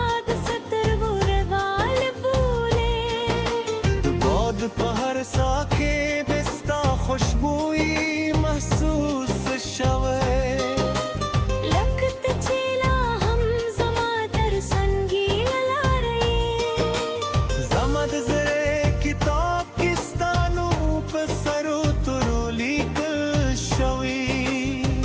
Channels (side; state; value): both; identical; correlation 1.00